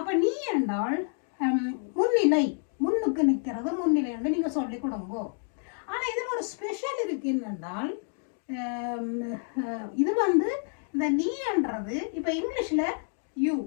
நீ என்றால் முன்னிலை, முன்னுக்கு நிற்கிறது முன்னிலை என்று நீங்கள் சொல்லிக் கொடுங்கோ. ஆனால் இதில் ஒரு ஸ்பெஷல் இருக்கு என்னென்றால், இது வந்து இந்த நீ என்றது இப்போ இங்கிலீஷில் யூ,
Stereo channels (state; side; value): silent; right; 59 dB below the other